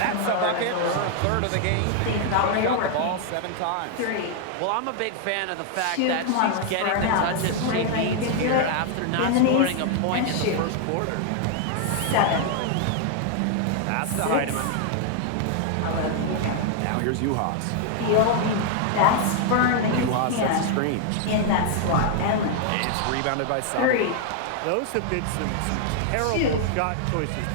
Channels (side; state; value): both; different; correlation 0.00